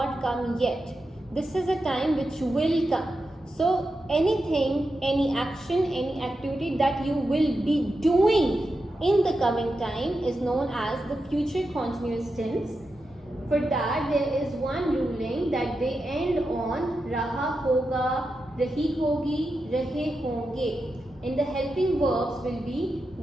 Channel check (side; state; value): both; normal; correlation 0.89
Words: come yet. This is a time which will come. So anything, any action, any activity that you will be doing in the coming time is known as the future continuous tense. For that, there is one ruling that they end on raha hoga, rahi hogi, rahe honge. And the helping verbs will